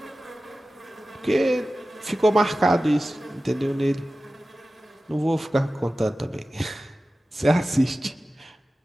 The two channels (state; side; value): normal; both; correlation 0.95